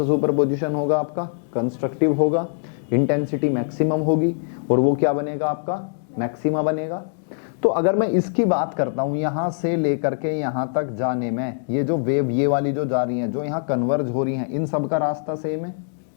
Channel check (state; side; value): silent; right; digital silence